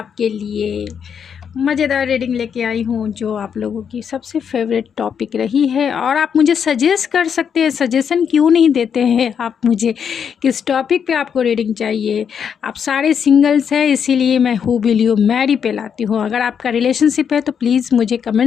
लिए मज़ेदार रीडिंग लेके आई हूँ जो आप लोगों की सबसे फेवरेट टॉपिक रही है। और आप मुझे सजेस्ट कर सकते हैं, सजेशन क्यों नहीं देते हैं आप मुझे, किस टॉपिक पे आपको रीडिंग चाहिए। आप सारे सिंगल्स हैं, इसीलिए मैं हु विल यू मैरी पे लाती हूँ। अगर आपका रिलेशनशिप है तो प्लीज़ मुझे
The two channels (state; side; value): quieter; right; 7.4 dB